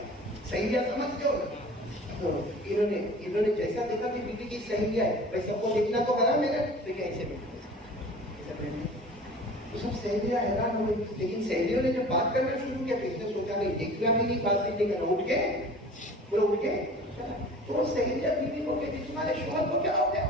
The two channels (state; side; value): normal; both; correlation 0.43